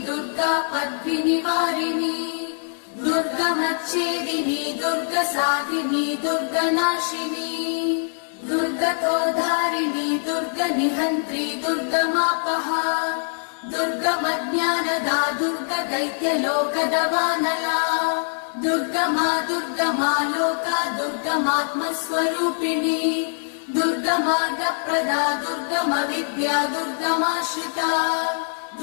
दुर्गा पद्मिनिवारिणी दुर्गमच्छेदिनी दुर्गसाधिनी दुर्गनाशिनी दुर्गतोधारिणी दुर्गनिहन्त्री दुर्गमापहा दुर्गमज्ञानदा दुर्गदैत्यलोकदवानला दुर्गमा दुर्गमा लोका दुर्गमात्मस्वरूपिणी दुर्गमार्गप्रदा दुर्गमविद्या दुर्गमाश्रिता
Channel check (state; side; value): silent; right; digital silence